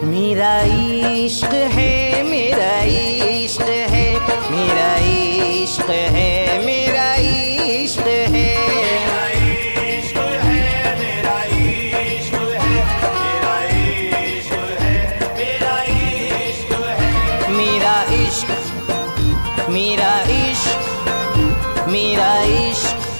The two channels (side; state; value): both; inverted; correlation -1.00